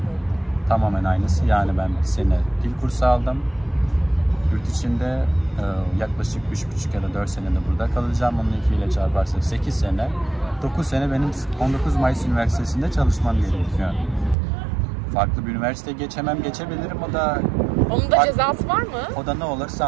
tamamen aynısı. Yani ben 1 sene dil kursu aldım. Yurt içinde yaklaşık 3,5 ya da 4 senede burada kalacağım. Onun 2 ile çarparsak 8 sene. 9 sene benim 19 Mayıs Üniversitesi'nde çalışmam gerekiyor. Farklı bir üniversiteye geçebilirim. Onun da cezası var mı? O da ne olur?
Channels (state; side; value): drops out; left; at 14.4 s